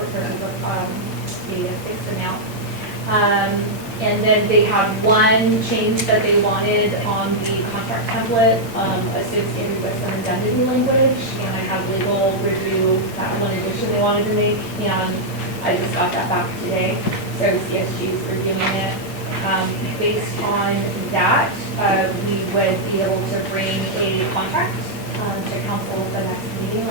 the fixed amount. And then they have one change that they wanted on the contract template associated with some indemnity language, and I had legal review that one addition they wanted to make, and I just got that back today, so CSG is reviewing it. Based on that, we would be able to bring a contract to council at the next meeting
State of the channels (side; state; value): right; late; 8.7 ms